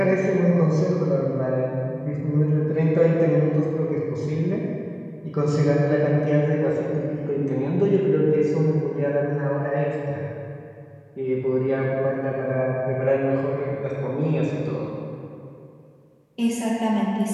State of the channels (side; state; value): both; identical; correlation 1.00